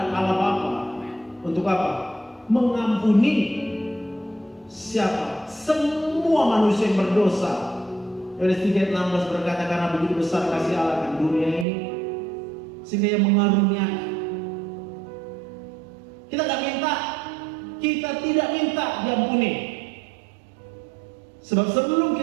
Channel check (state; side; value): drops out; left; at 11.7 s